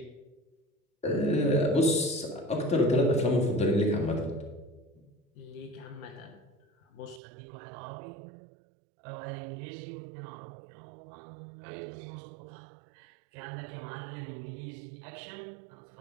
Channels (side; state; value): left; drops out; at 7.2 s